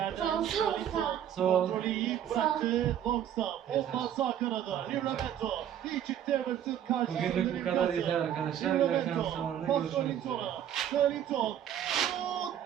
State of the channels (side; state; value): left; quieter; 10.3 dB